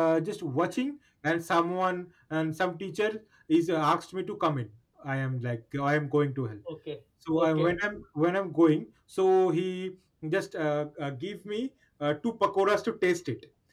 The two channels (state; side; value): identical; both; correlation 1.00